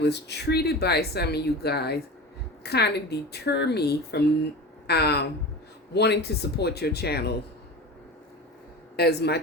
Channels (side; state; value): both; normal; correlation 0.31